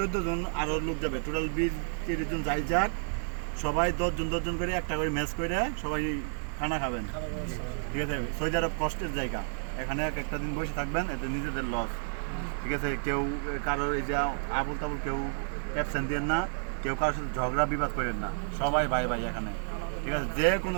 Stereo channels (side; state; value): left; silent; digital silence